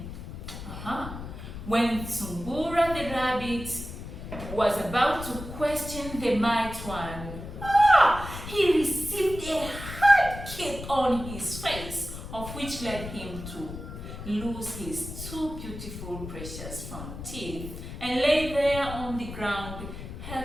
When Sungura the rabbit was about to question the mighty one, he received a hard kick on his face, of which led him to lose his two beautiful precious front teeth and lay there on the ground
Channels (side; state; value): left; noise; rumble, 10 dB below the sound